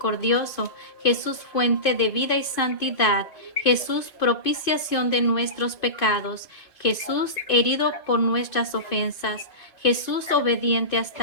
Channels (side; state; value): right; late; 2.5 ms